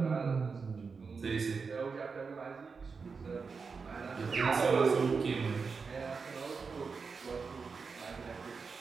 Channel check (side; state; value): left; quieter; 5.0 dB